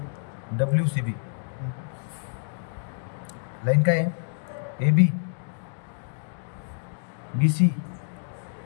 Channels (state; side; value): silent; right; digital silence